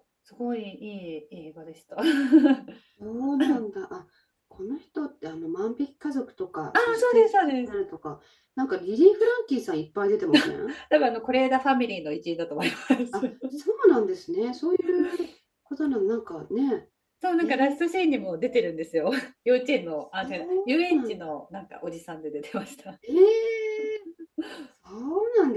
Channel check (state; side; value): identical; both; correlation 1.00